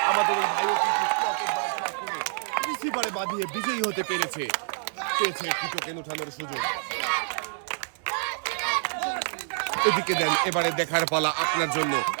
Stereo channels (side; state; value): left; silent; digital silence